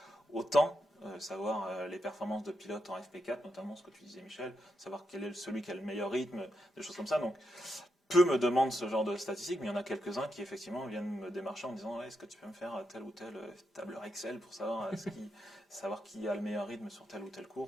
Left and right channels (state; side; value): normal; both; correlation 0.83